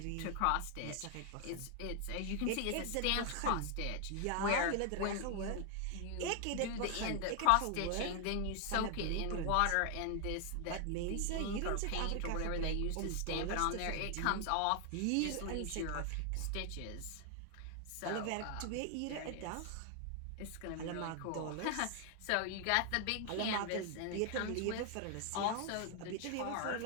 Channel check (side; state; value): both; different; correlation 0.00